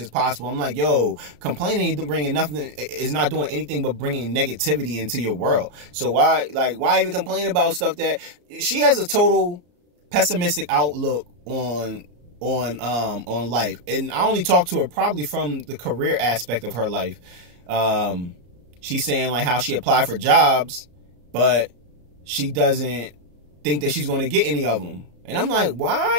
possible. I'm like, yo, complaining is not doing anything but bringing negativity into your world. So why even complain about stuff that she has a total pessimistic outlook on life. And I only talk to her probably from the career aspect of her life. She's saying like how she applied for jobs, but she doesn't think that she's going to get any of them. And I'm like,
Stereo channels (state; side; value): late; left; 34 ms